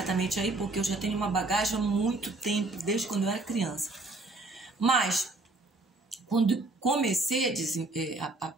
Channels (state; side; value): quieter; left; 3.1 dB